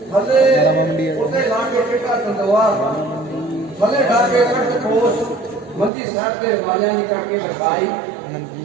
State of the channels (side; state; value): left; drops out; at 5.9 s